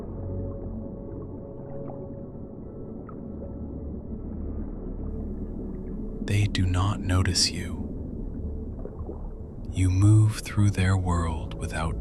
They do not notice you. You move through their world without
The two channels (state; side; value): identical; both; correlation 1.00